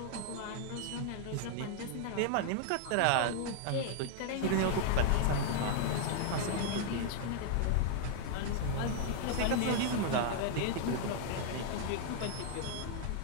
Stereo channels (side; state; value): both; different; correlation 0.00